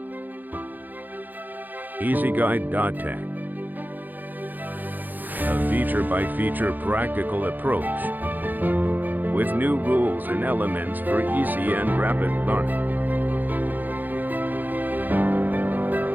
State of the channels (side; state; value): left; late; 0.085 ms